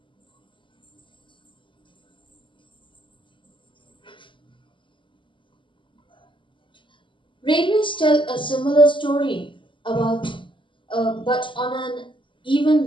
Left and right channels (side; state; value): right; late; 0.24 ms